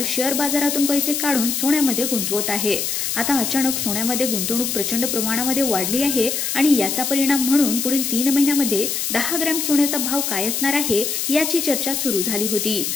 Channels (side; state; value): left; noise; hiss, 1 dB below the sound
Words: शेअर बाजारातून पैसे काढून सोन्यामध्ये गुंतवत आहे। आता अचानक सोन्यामध्ये गुंतवणूक प्रचंड प्रमाणामध्ये वाढली आहे आणि याचा परिणाम म्हणून पुढील 3 महिन्यांमध्ये 10 ग्रॅम सोन्याचा भाव काय असणार आहे याची चर्चा सुरू झाली होती